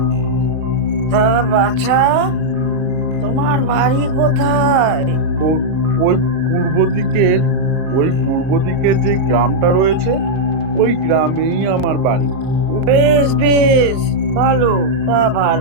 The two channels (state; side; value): late; left; 38 ms